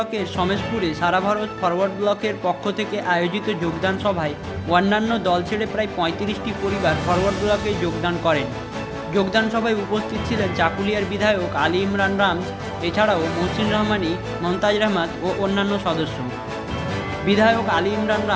সমেশপুরে সারা ভারত ফরওয়ার্ড ব্লকের পক্ষ থেকে আয়োজিত যোগদান সভায় অন্যান্য দল ছেড়ে প্রায় 35টি পরিবার ফরওয়ার্ড ব্লকে যোগদান করেন। যোগদান সভায় উপস্থিত ছিলেন চাকুলিয়ার বিধায়ক আলী ইমরান রামজ, এছাড়াও মহসিন রহমানী, মমতাজ রহমান ও অন্যান্য সদস্য। বিধায়ক আলী ইমরান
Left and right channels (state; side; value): identical; both; correlation 1.00